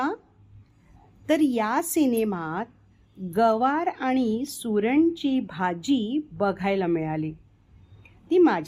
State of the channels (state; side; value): identical; both; correlation 1.00